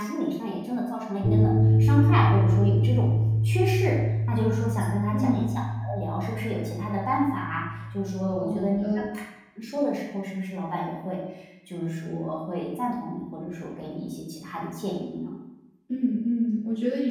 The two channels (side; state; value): both; identical; correlation 1.00